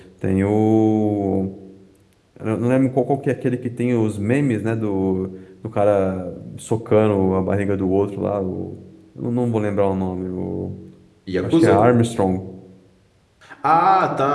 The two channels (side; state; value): both; identical; correlation 1.00